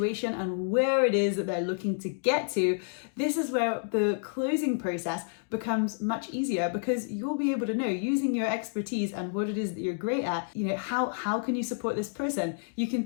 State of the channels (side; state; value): right; silent; digital silence